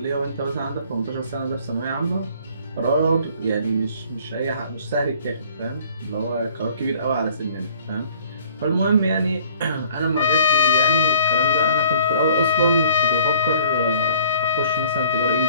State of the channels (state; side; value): inverted; both; correlation -0.56